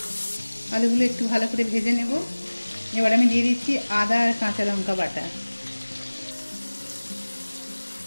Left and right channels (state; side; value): inverted; both; correlation -1.00